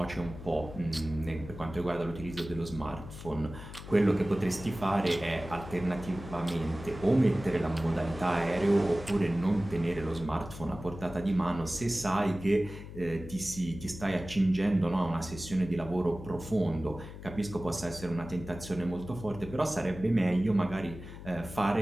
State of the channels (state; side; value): noise; left; hum, 13 dB below the sound